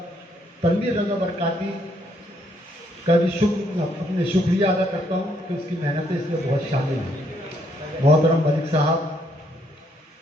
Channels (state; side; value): normal; both; correlation 0.71